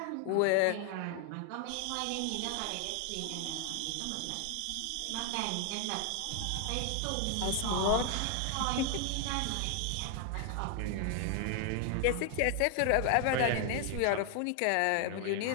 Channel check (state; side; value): different; both; correlation 0.00